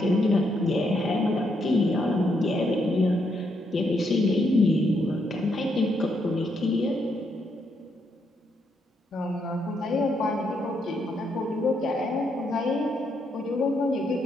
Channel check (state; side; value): normal; both; correlation 0.77